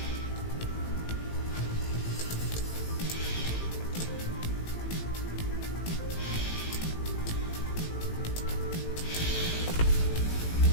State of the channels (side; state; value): right; late; 18 ms